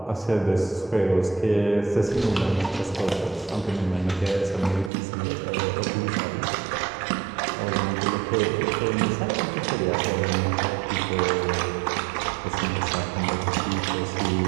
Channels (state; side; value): drops out; left; at 4.9 s